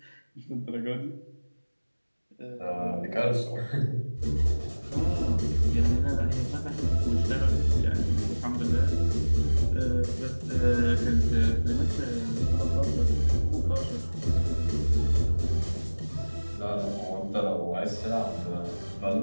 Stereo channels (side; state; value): both; inverted; correlation -1.00